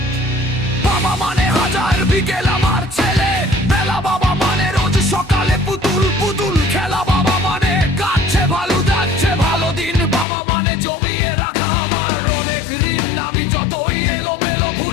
বাবা মানে হাজার বিকেল আমার ছেলে বেলা, বাবা মানে রোজ সকালে পুতুল পুতুল খেলা, বাবা মানে কাটছে ভালো যাচ্ছে ভালো দিন, বাবা মানে জমিয়ে রাখা আমার অনেক ঋণ। আমি যতই এলোমেলো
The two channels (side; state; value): right; drops out; at 10.2 s